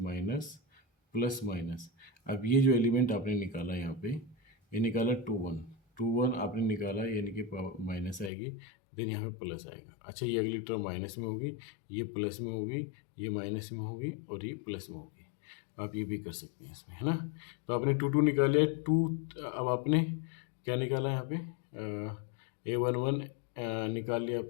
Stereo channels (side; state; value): right; drops out; at 8.3 s